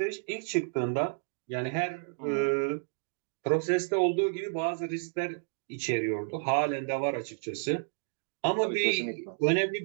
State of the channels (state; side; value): silent; left; digital silence